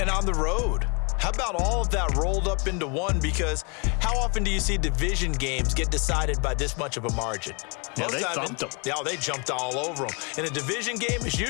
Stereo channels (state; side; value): quieter; right; 33.4 dB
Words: And on the road. How about all of that rolled up into one? Because how often do you see division games get decided by this much of a margin? Yeah, they thumped them. Yeah, they jumped all over them. And a division game is